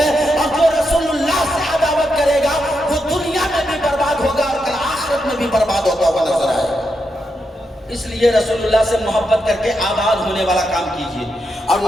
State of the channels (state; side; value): normal; both; correlation 0.84